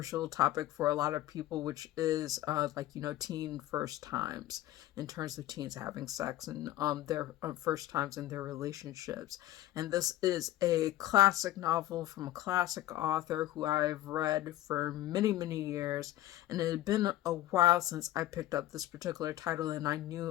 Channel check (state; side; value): quieter; right; 14.6 dB